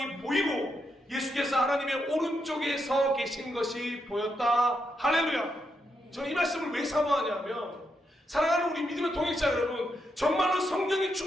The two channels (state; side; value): normal; both; correlation 0.82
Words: 보이고 예수께서 하나님의 오른쪽에 서 계신 것이 보였다. 할렐루야. 저는 이 말씀을 왜 사모하냐면, 사랑하는 우리 믿음의 동역자 여러분, 정말로 성령이